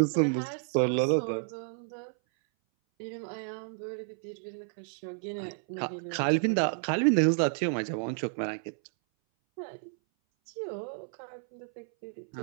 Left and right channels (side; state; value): left; silent; 57 dB below the other